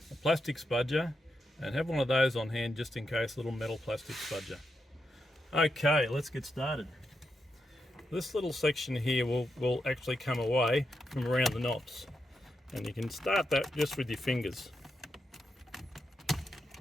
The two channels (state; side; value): normal; both; correlation 0.84